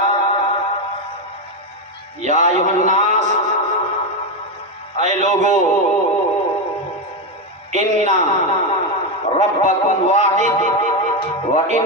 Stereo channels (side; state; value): both; normal; correlation 0.09